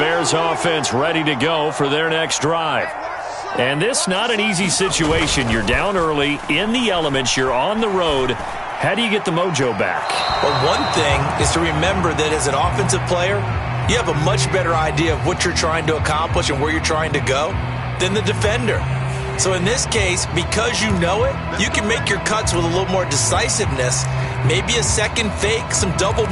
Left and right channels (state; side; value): identical; both; correlation 1.00